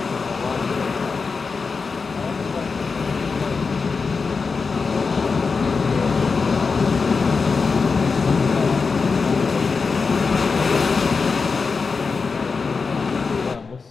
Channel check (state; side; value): quieter; right; 4.8 dB